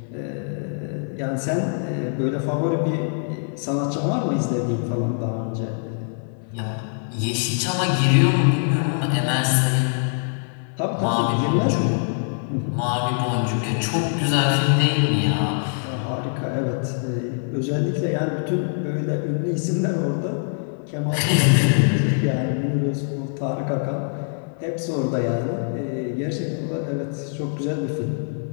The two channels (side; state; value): right; silent; 63 dB below the other